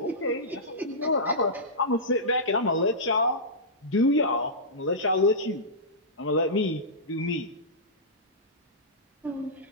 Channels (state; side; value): normal; both; correlation -0.16